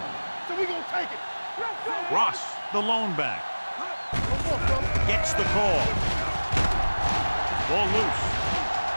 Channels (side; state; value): both; inverted; correlation -1.00